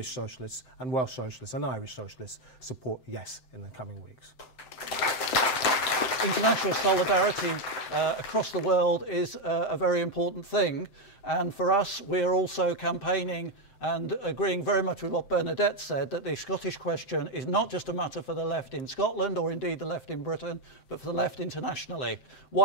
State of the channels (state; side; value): late; right; 7.7 ms